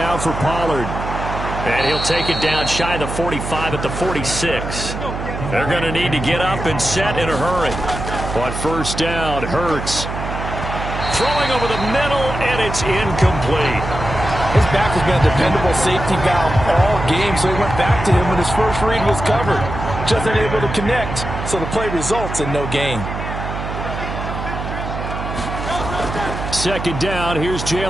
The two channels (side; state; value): right; noise; hum, 6 dB below the sound